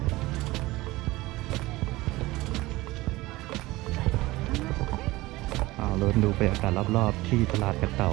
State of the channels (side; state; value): left; quieter; 19.5 dB